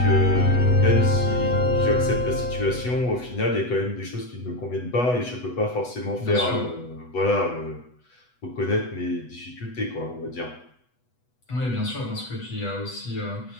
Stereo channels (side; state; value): right; late; 8.1 ms